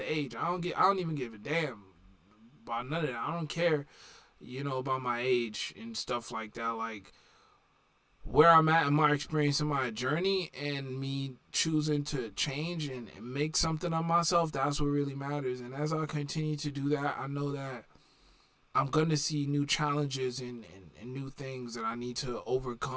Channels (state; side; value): identical; both; correlation 1.00